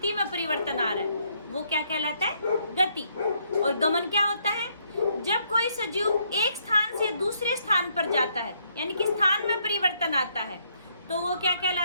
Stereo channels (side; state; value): both; inverted; correlation -0.72